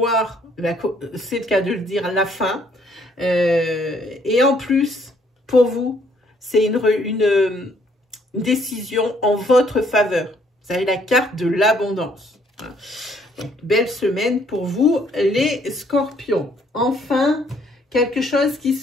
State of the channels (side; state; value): both; normal; correlation 0.65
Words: c'est le cas de le dire, la fin. Et en plus, pour vous, c'est une décision en votre faveur. Vous avez la carte de l'abondance. Donc, belle semaine pour vous, les scorpions. Enfin, quelque chose qui